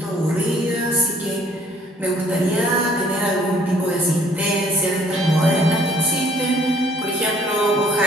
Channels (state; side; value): normal; both; correlation 0.60